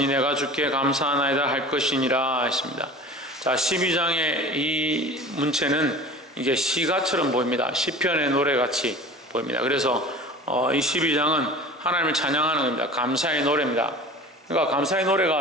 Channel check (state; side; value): normal; both; correlation 0.39